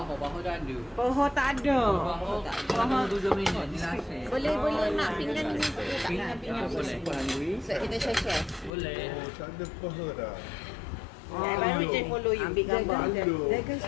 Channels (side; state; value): right; drops out; at 8.7 s